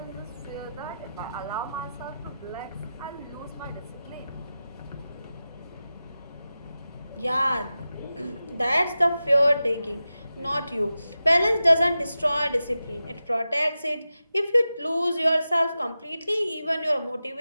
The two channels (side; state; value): both; inverted; correlation -0.93